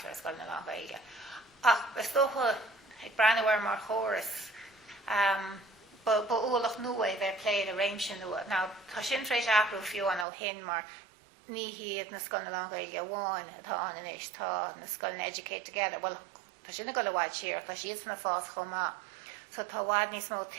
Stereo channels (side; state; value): left; drops out; at 10.2 s